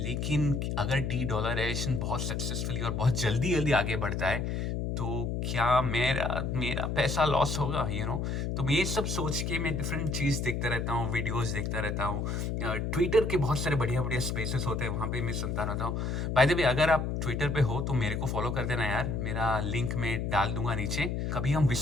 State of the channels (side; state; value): left; noise; hum, 1 dB below the sound